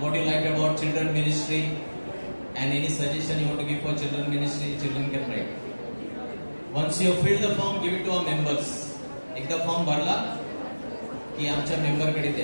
what you like about children ministry and any suggestion you want to give for children ministry, children can write. Once you fill the form, give it to our members. एकदा form भरला की आमच्या member कडे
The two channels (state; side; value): inverted; both; correlation -1.00